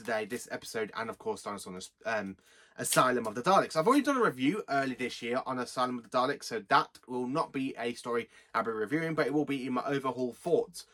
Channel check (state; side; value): identical; both; correlation 1.00